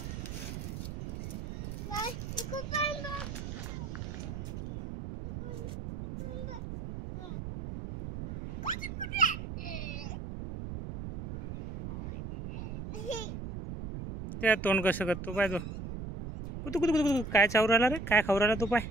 त्या तोंड कसं करतो पाय तो, कुतू कुतू कुतू काय चावू राहिला रे, काय खाऊ राहिला तो पाय,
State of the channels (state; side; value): noise; right; rumble, 7 dB below the sound